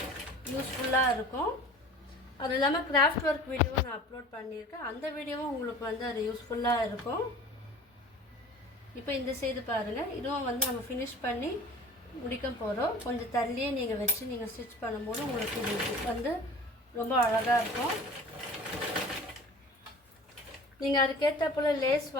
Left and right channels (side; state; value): both; normal; correlation 0.43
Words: யூஸ்ஃபுல்லாக இருக்கும். அது இல்லாமல் கிராஃப்ட் ஒர்க் வீடியோவை நான் அப்லோட் பண்ணியிருக்கேன். அந்த வீடியோவும் உங்களுக்கு வந்து அது யூஸ்ஃபுல்லாக இருக்கும். இப்போ இந்த சைடு பாருங்கள், இதுவும் வந்து நம்ம ஃபினிஷ் பண்ணி முடிக்க போகிறோம். கொஞ்சம் தள்ளியே நீங்கள் வச்சு நீங்கள் ஸ்டிச் பண்ணும்போது உங்களுக்கு இது வந்து ரொம்ப அழகாக இருக்கும். நீங்கள் அதுக்கேற்ற போல் லேஸ்